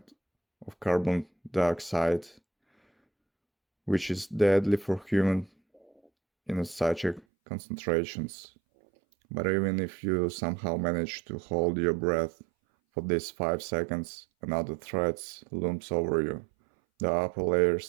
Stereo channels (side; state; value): left; drops out; at 7.2 s